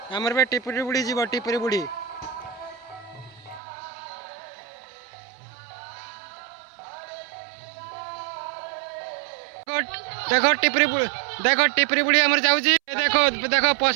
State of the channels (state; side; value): drops out; left; at 3.6 s